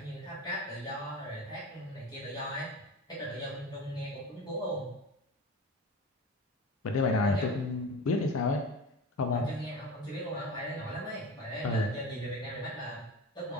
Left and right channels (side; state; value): both; normal; correlation 0.32